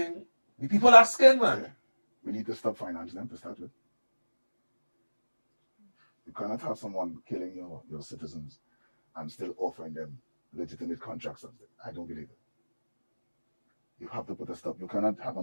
people are scared, man. Yeah. We need to stop financing them to start with. You cannot have someone killing your citizens and still offering them legitimate contracts. I don't believe it. You have to put a stop. You cannot have a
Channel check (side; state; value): both; inverted; correlation -1.00